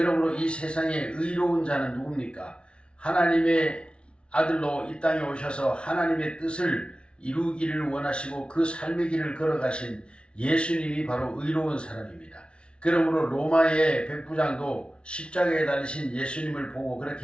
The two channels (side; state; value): right; late; 0.058 ms